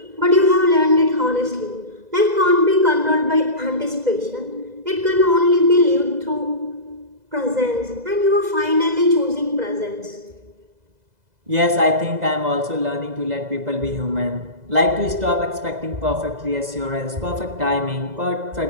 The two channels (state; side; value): late; left; 2.0 ms